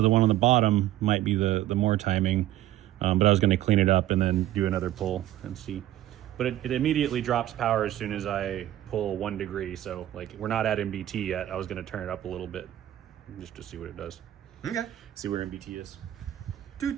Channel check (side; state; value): left; quieter; 13.6 dB